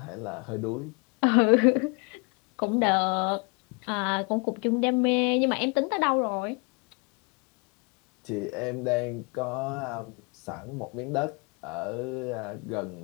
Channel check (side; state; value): right; quieter; 32.6 dB